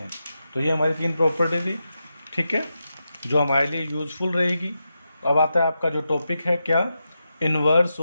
तो ये हमारी 3 प्रॉपर्टी थी, ठीक है, जो हमारे लिए यूजफुल रहेगी। अब आता है आपका जो टॉपिक है, क्या, इन्वर्स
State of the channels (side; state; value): both; inverted; correlation -0.88